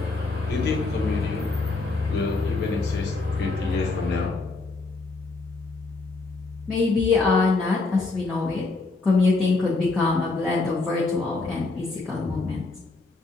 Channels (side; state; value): right; quieter; 3.5 dB